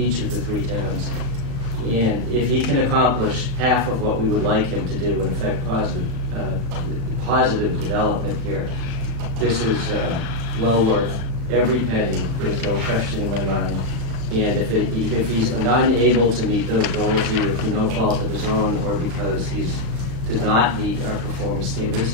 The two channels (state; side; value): late; left; 35 ms